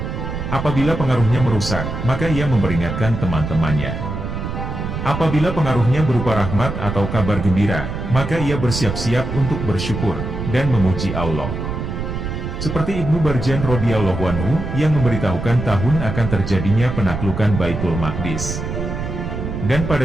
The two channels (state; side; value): noise; right; rumble, 5 dB below the sound